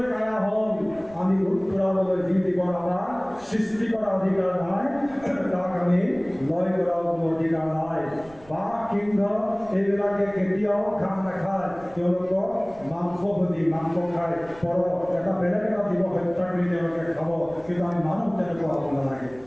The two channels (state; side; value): noise; right; rumble, 23 dB below the sound